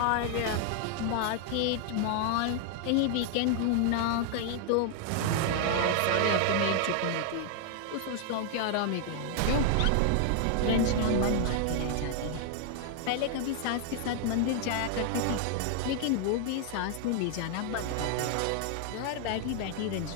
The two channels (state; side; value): different; both; correlation 0.00